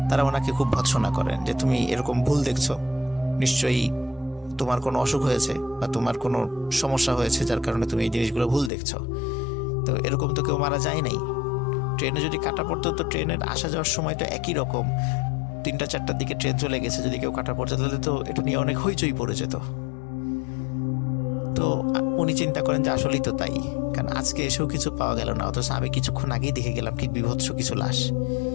তারা ওনাকে খুব ভৎসনা করেন যে তুমি এরকম ভুল দেখছো, নিশ্চয়ই তোমার কোনো অসুখ হয়েছে বা তোমার কোনো সমস্যা হয়েছে যার কারণে তুমি এই জিনিসগুলো ভুল দেখছো। তো এরকম তো কেউ মারা যায় নাই, ট্রেনে যদি কাটা পড়তো তো ট্রেনের আসা যাওয়ার সময় তো একই রকম, 3টা-4টার দিকে ট্রেন চলে গেছে, যদি কেউ কাটা পড়তো তাহলে তো এটা নিয়ে অনেক হইচই পড়ে যেত। তো তো উনি চিন্তা করেন যে আসলেই তো তাই, কারণ আজকে এসেও কিছু পাওয়া গেল না, অথচ আমি কিছুক্ষণ আগেই দেখে গেলাম কি বিভৎস কিছু লাশ,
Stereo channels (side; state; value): right; drops out; at 8.7 s